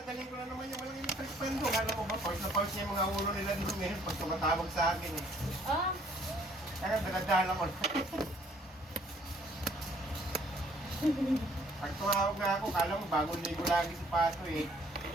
galing ko na naman yung walang electric fan doon. Alam mo ba, pause na pause niya yung mga ulo nila dito ngayon pag tumatawag sa akin eh. Ah? Kaya daladala ko. Pag tumawag na ako, kala mo bagong ligo lagi si Pato eh.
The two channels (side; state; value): both; normal; correlation 0.61